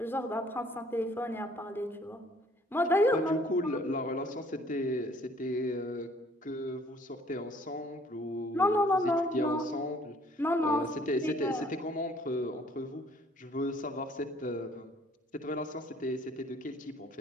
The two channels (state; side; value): normal; both; correlation 0.59